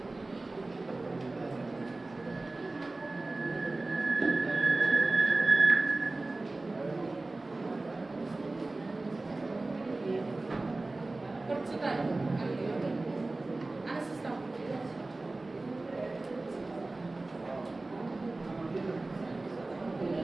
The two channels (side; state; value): left; quieter; 3.1 dB